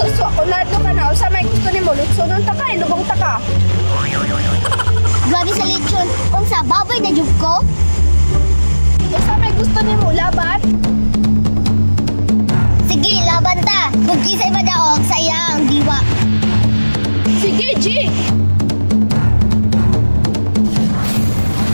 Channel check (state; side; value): inverted; both; correlation -1.00